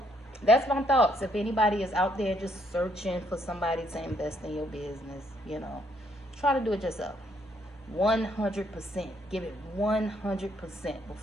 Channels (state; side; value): normal; both; correlation 0.70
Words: that's my thoughts. If anybody is out there just searching for somebody to invest in your business, you know, try to do it yourself. 100%. Give it 100%